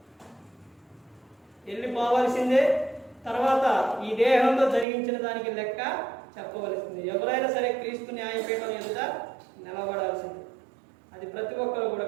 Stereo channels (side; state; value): left; drops out; at 4.9 s